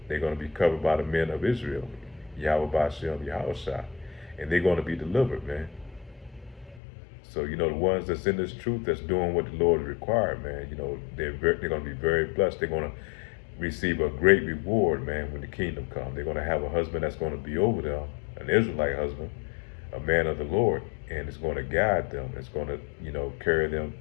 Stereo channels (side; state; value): right; drops out; at 6.8 s